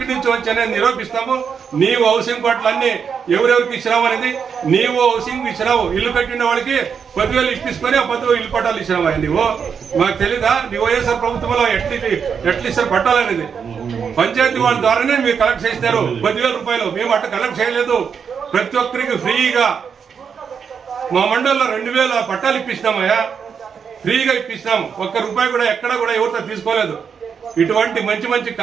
నుంచి వచ్చానని నిరూపిస్తాము. నీవు హౌసింగ్ పట్లన్నీ ఎవరెవరికి ఇచ్చినావు అనేది, నీవు హౌసింగ్ ఇచ్చినావు, ఇల్లు కట్టిన వాళ్ళకి 10,000 ఇప్పించుకొని ఆ 10,000 ఇల్లు పట్టాలు ఇచ్చినావా? నువ్వు మాకు తెలీదా? నీ వైఎస్ఆర్ ప్రభుత్వంలో ఎట్లా ఇస్తారు పట్టాలనేది? పంచాయతీ వాళ్ళ ద్వారానే మీరు కలెక్ట్ చేస్తారు 10,000 రూపాయలు. మేము అట్లా కలెక్ట్ చేయలేదు. ప్రతి ఒక్కరికి ఫ్రీగా మా మండలంలో 2000 పట్టాలు ఇప్పిస్తామయ్యా, ఫ్రీగా ఇప్పిస్తాం. ఒక్క రూపాయి కూడా ఎక్కడ కూడా ఎవరితో తీసుకోలేదు. ఇటువంటి మంచి మంచి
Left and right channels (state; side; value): quieter; left; 6.7 dB